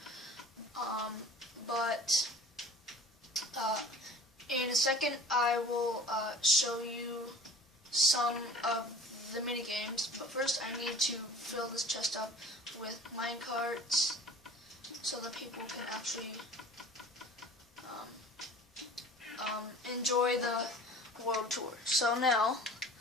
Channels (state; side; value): normal; both; correlation 0.43